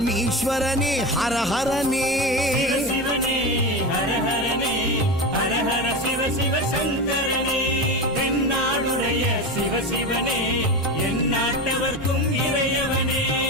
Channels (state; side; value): normal; both; correlation 0.22